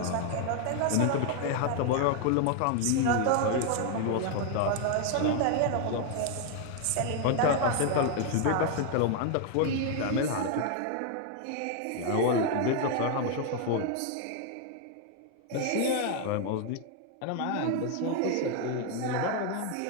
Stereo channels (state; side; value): different; both; correlation 0.01